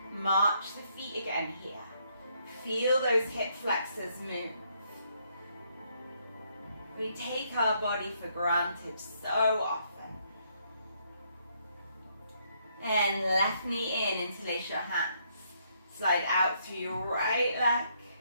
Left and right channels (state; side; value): inverted; both; correlation -0.72